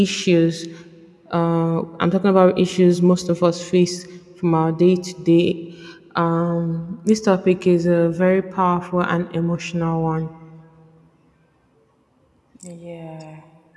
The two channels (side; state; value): both; identical; correlation 1.00